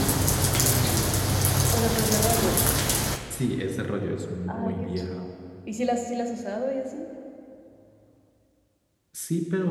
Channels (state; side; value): identical; both; correlation 1.00